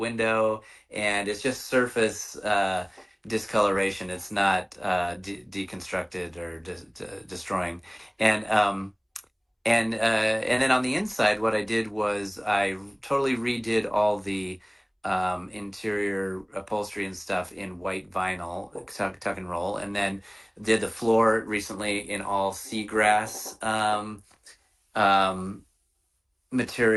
and it's just surface discoloration. It's not deconstructed or destroying. And and then on the inside, what I did was I totally redid all the interior upholstery and stuff in white vinyl, tuck and roll, and then did the floor recently in all seagrass um,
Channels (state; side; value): identical; both; correlation 1.00